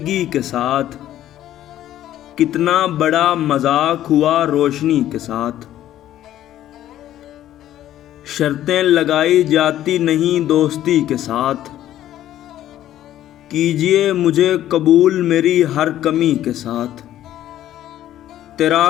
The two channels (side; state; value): right; quieter; 12.6 dB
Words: کے ساتھ، کتنا بڑا مذاق ہوا روشنی کے ساتھ۔ شرطیں لگائی جاتی نہیں دوستی کے ساتھ، کیجئے مجھے قبول میری ہر کمی کے ساتھ۔ تیرا